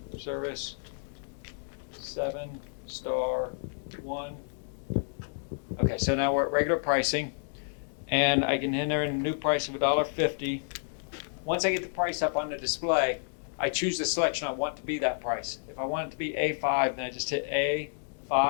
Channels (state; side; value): silent; right; digital silence